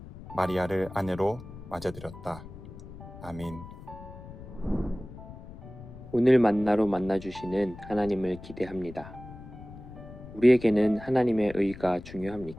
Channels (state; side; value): noise; left; rumble, 15 dB below the sound